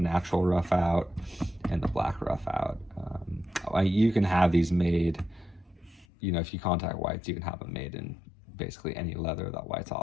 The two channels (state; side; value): drops out; right; at 6.1 s